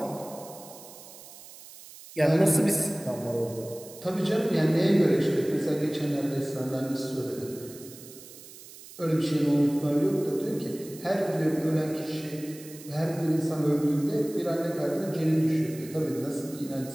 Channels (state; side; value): noise; right; hiss, 18 dB below the sound